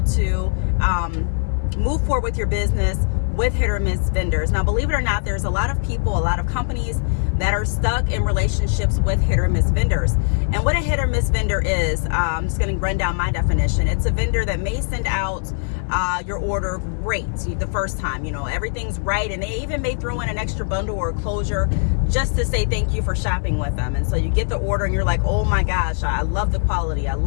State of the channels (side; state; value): right; silent; 65 dB below the other